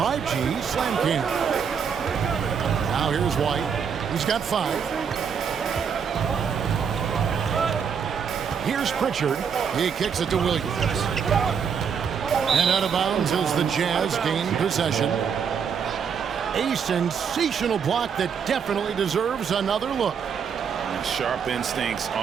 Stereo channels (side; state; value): left; quieter; 6.9 dB